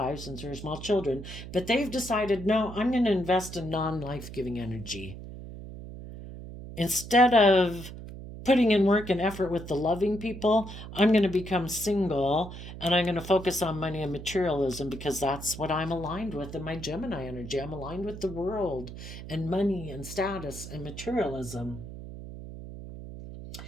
since we were small children. But they've decided, no, I'm going to invest in non-life giving energy. Instead of putting in work and effort with the loving people, I'm going to become single and I'm going to focus on money and materialism because that's what I'm aligned with in my Gemini energy. I'm aligned with the world and money and status and materialism.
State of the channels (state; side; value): noise; right; hum, 11 dB below the sound